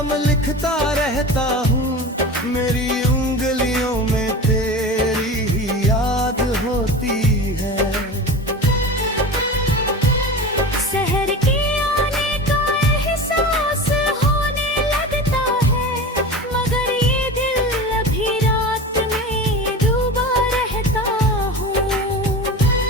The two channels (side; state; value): both; normal; correlation 0.31